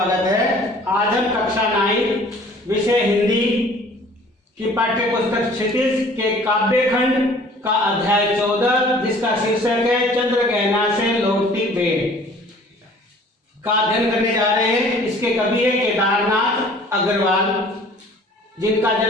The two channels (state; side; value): normal; both; correlation 0.51